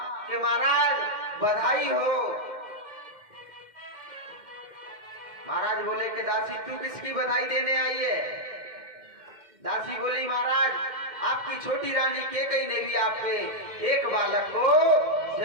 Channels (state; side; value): late; left; 2.1 ms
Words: कि महाराज बधाई हो। महाराज बोले कि दासी तू किसकी बधाई देने आई है? दासी बोली महाराज आपकी छोटी रानी केकई ने भी आपके एक बालक को